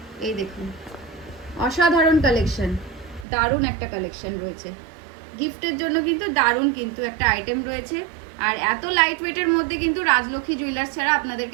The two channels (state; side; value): drops out; left; at 3.2 s